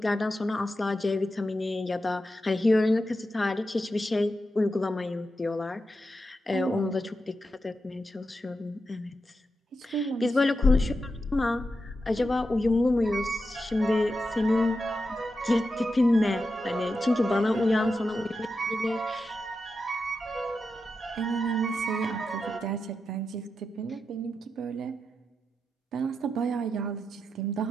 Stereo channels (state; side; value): normal; both; correlation 0.88